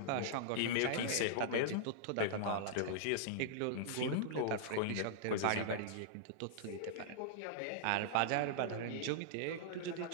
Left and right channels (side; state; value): both; different; correlation -0.02